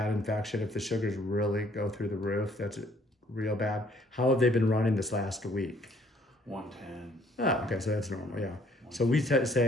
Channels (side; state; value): both; normal; correlation 0.62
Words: infection, if the sugars really go through the roof, that's real bad. How have they been running this last week? 110. Oh, okay, so that's normal, yeah. So we